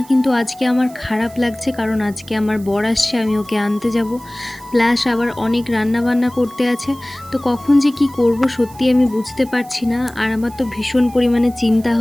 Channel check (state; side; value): noise; right; hiss, 22 dB below the sound